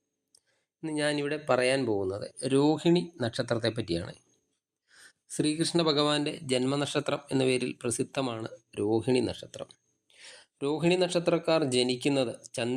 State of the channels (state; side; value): identical; both; correlation 1.00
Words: ഇന്ന് ഞാനിവിടെ പറയാൻ പോകുന്നത് രോഹിണി നക്ഷത്രത്തെ പറ്റിയാണ്. ശ്രീകൃഷ്ണ ഭഗവാന്റെ ജന്മനക്ഷത്രം എന്ന പേരിൽ പ്രസിദ്ധമാണ് രോഹിണി നക്ഷത്രം. രോഹിണി നക്ഷത്രക്കാർ ജനിക്കുന്നത്